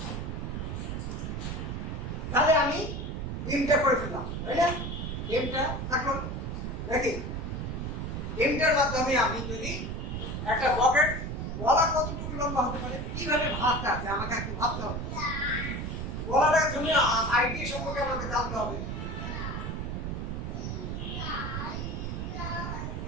তাহলে আমি ডিমটা করে ফেললাম, তাই না? ডিমটা থাকলো নাকি? ডিমটার মাধ্যমে আমি যদি একটা বকেট, গলা কতটুকু লম্বা হতে পারে, কিভাবে ভাবতে আছে আমাকে একটু ভাবতে হবে। গলাটার জন্য আইডিয়া সম্পর্কে আমাকে জানতে হবে।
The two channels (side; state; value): right; noise; rumble, 4 dB below the sound